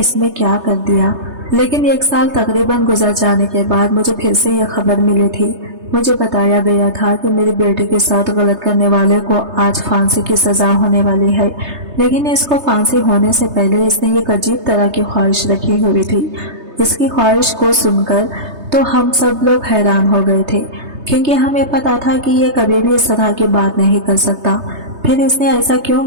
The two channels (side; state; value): left; late; 3.3 ms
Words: نے کیا کر دیا۔ لیکن 1 سال تقریباً گزر جانے کے بعد مجھے پھر سے یہ خبر ملی تھی۔ مجھے بتایا گیا تھا کہ میری بیٹی کے ساتھ غلط کرنے والے کو آج پھانسی کی سزا ہونے والی ہے، لیکن اس کو پھانسی ہونے سے پہلے اس نے ایک عجیب طرح کی خواہش رکھی ہوئی تھی۔ اس کی خواہش کو سن کر تو ہم سب لوگ حیران ہو گئے تھے، کیونکہ ہمیں پتا تھا کہ یہ کبھی بھی اس طرح کی بات نہیں کر سکتا۔ پھر اس نے ایسا کیوں